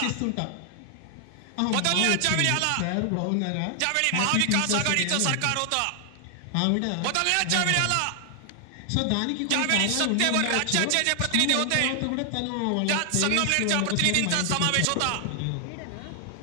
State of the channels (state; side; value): different; both; correlation 0.00